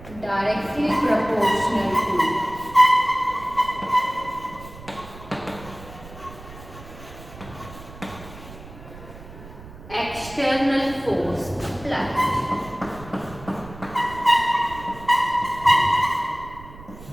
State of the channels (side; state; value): right; noise; rumble, 16 dB below the sound